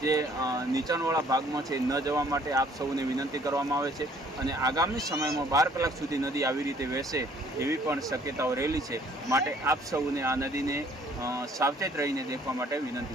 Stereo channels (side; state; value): both; normal; correlation 0.59